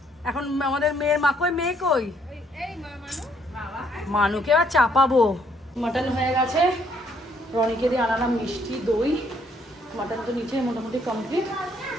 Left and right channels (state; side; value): normal; both; correlation 0.68